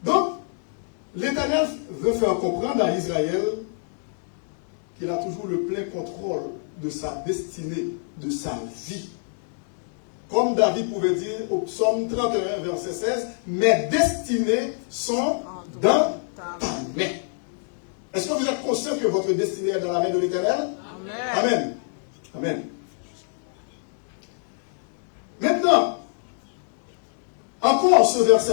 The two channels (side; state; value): right; silent; 61 dB below the other